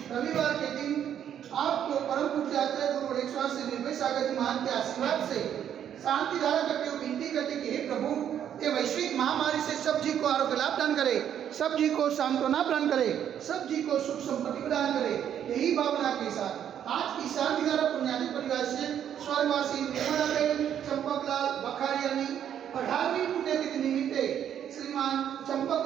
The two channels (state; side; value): quieter; left; 9.6 dB